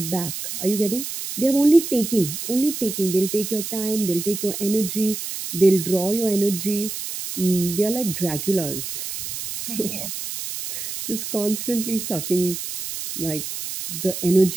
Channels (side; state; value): right; noise; hiss, 6 dB below the sound